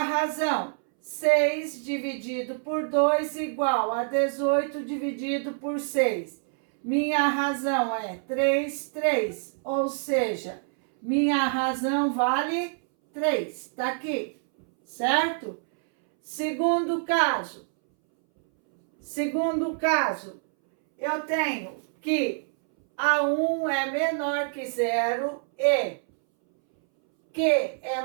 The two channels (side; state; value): left; silent; 61 dB below the other